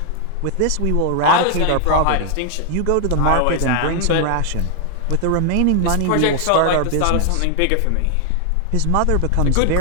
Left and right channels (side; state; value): both; different; correlation 0.00